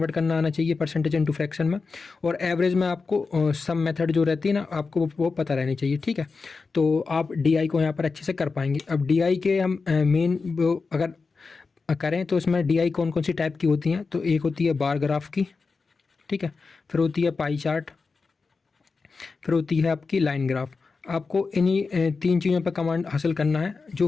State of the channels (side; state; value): right; quieter; 4.5 dB